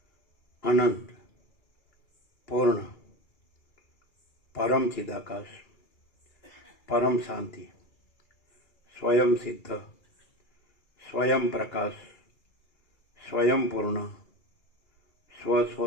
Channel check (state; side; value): late; right; 2.3 ms